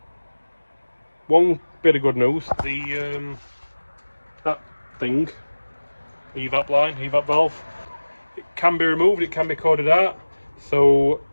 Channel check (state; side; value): inverted; both; correlation -1.00